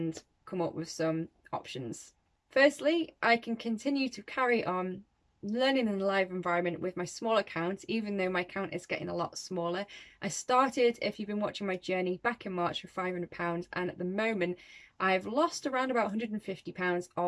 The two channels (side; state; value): both; identical; correlation 1.00